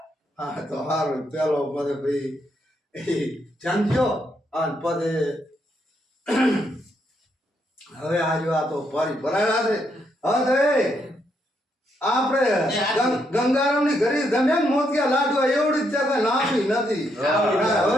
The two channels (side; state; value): both; normal; correlation 0.77